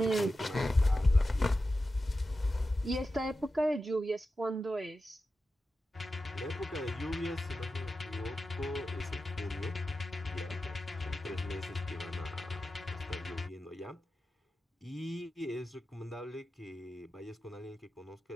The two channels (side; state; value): both; normal; correlation 0.92